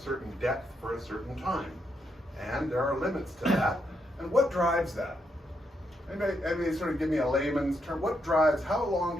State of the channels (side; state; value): both; normal; correlation 0.80